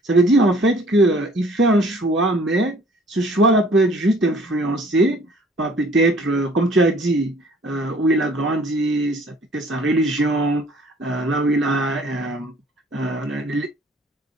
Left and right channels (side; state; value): both; normal; correlation 0.55